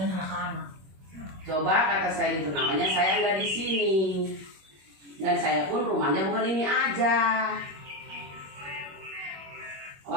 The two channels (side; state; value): left; late; 21 ms